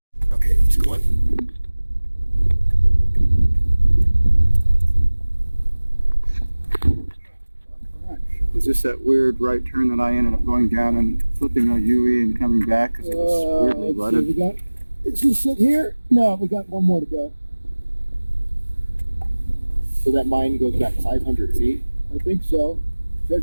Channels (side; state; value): both; inverted; correlation -1.00